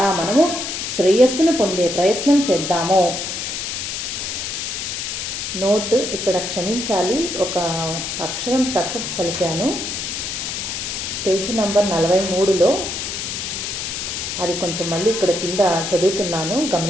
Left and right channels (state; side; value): noise; left; hiss, 4 dB below the sound